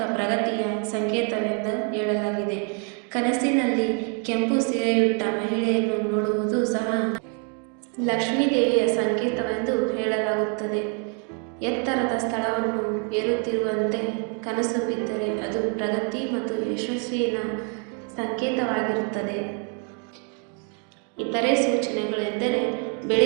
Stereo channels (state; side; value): quieter; left; 40.0 dB